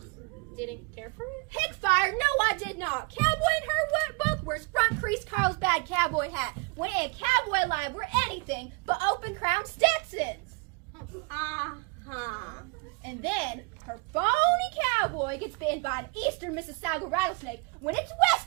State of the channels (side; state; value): left; quieter; 31.0 dB